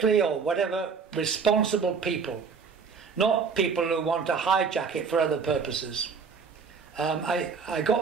or whatever, responsible people, not people who want to hijack it for other purposes. And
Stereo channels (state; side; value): quieter; left; 5.6 dB